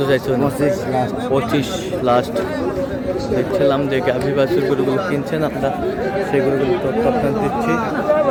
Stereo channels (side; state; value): both; identical; correlation 1.00